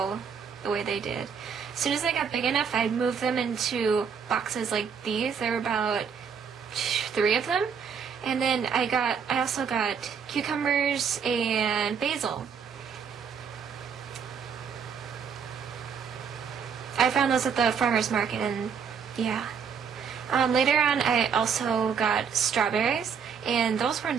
the way they did. As soon as they got big enough, I'd move them into boxes like these. There were about 3 of them. And then I also got cucumbers and basil. I found those at the farmer's market, and yeah. Later on, I also got strawberries, and those were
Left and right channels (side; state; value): left; quieter; 6.7 dB